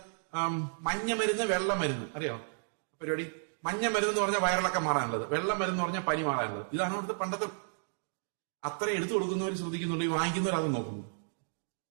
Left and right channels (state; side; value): silent; left; digital silence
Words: മഞ്ഞ മരുന്ന്, വെള്ള മരുന്ന്, അറിയോ പരിപാടി? മഞ്ഞ മരുന്ന് എന്ന് പറഞ്ഞാൽ വയറിളക്കം മാറാനുള്ളത്, വെള്ള മരുന്ന് എന്ന് പറഞ്ഞാൽ പനി മാറാനുള്ളത്. ഇതാണ് അവിടുത്തെ പണ്ടത്തെ. അത്ര എടുത്തു കൊടുക്കുന്നവർ ശ്രദ്ധിക്കുന്നുണ്ട്, ഈ വാങ്ങിക്കുന്നവർ അത് നോക്കുന്നു.